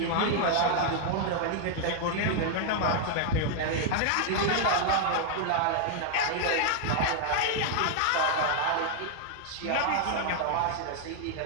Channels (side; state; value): both; different; correlation 0.00